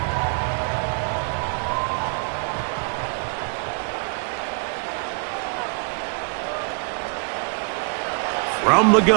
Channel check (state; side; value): quieter; left; 40.0 dB